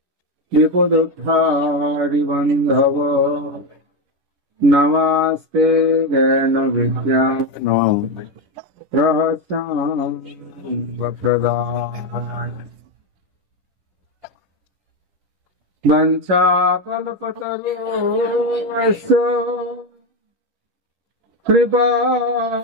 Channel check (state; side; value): late; left; 11 ms